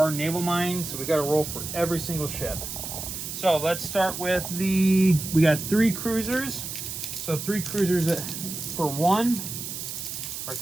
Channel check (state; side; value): noise; right; hiss, 7 dB below the sound